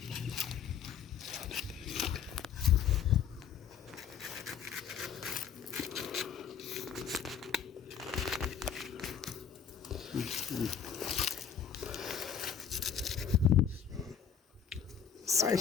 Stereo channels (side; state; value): right; quieter; 7.9 dB